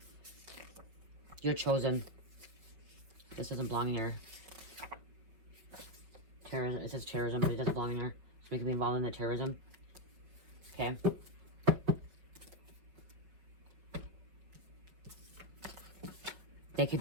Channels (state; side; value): late; left; 5.6 ms